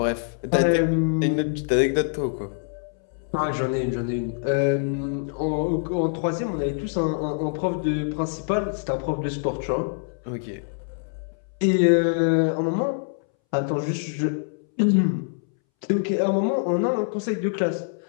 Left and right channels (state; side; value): silent; right; 62 dB below the other